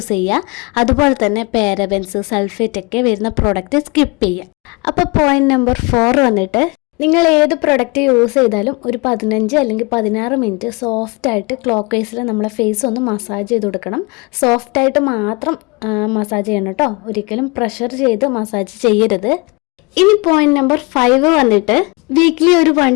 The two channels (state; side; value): quieter; right; 28.0 dB